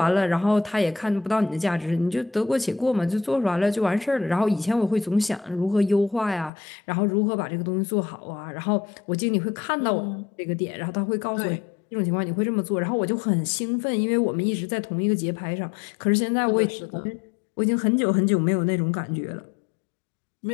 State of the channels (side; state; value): right; drops out; at 6.5 s